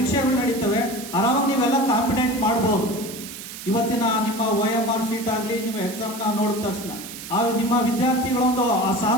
ನಡೀತವೆ ಆರಾಮಾಗಿ ನೀವೆಲ್ಲ ಕಾಂಪಿಟೆಂಟ್ ಮಾಡ್ಬೋದು. ಇವತ್ತಿನ ನಿಮ್ಮ OMR ಶೀಟ್ ಆಗಲಿ, ನಿಮ್ಮ ಎಕ್ಸಾಮ್ನ ನೋಡಿದ ತಕ್ಷಣ ನಿಮ್ಮ ವಿದ್ಯಾರ್ಥಿಗಳೊಂದು ಆ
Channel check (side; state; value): right; noise; hiss, 12 dB below the sound